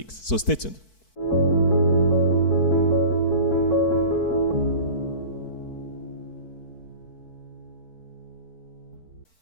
So stay tuned.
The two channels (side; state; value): right; late; 4.6 ms